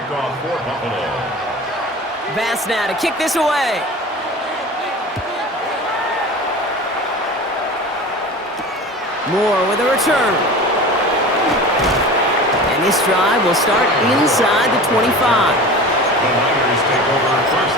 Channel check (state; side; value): normal; both; correlation 0.35